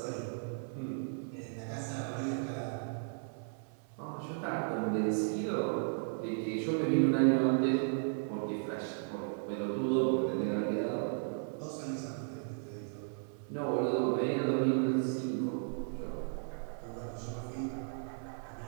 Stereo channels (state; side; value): silent; left; 54 dB below the other